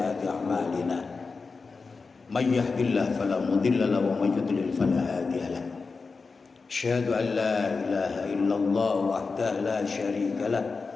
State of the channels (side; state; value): right; quieter; 4.4 dB